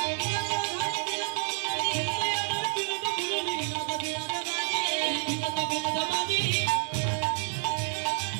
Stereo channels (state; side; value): silent; left; 59 dB below the other